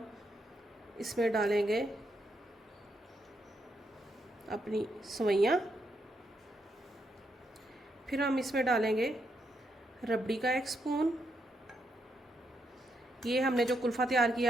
इसमें डालेंगे अपनी सवैयाँ, फिर हम इसमें डालेंगे रबड़ी का 1 स्पून। ये हमने जो कुल्फ़ा तैयार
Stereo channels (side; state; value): both; normal; correlation 0.79